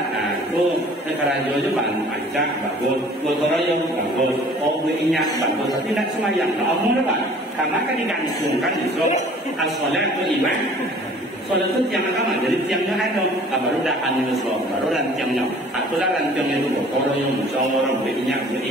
Nah, itu sekarajo juga pancak, bagus. Gotoroyong, bagus. Oh, ingat, bagus. Tapi tidak semayang. Nah, omong apa? Karena kan digantungkan itu as-sholat itu iman. Sholat itu tiang agama. Jadi tiangnya ada. Baru dah anil sholat. Baru dan tiangnya. Itulah rantiangnya itu. Gotoroyong, musyawarah, ingat,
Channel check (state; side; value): normal; both; correlation 0.50